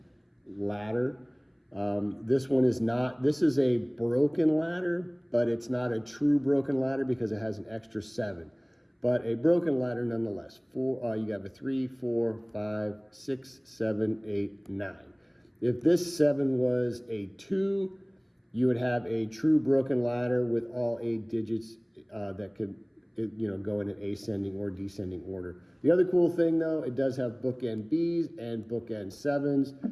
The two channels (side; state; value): both; identical; correlation 1.00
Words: ladder. This one is not, this is a broken ladder, but it's not a true broken ladder because it has an extra 7. But a broken ladder nonetheless. You have a 3, 4, 5, 6, 7, 8, 9. If this 7 was a 2, you would have a true broken ladder with all 8 digits that could, go in an ascending or descending order. The other cool thing though, it does have bookend Bs and bookend